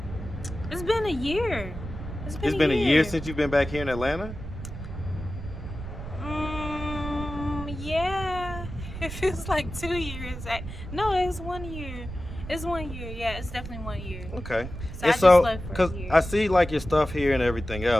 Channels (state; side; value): noise; right; rumble, 9 dB below the sound